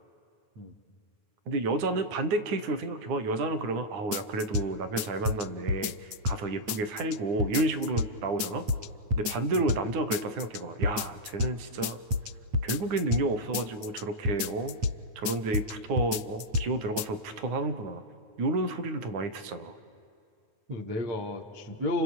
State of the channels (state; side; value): late; left; 9.3 ms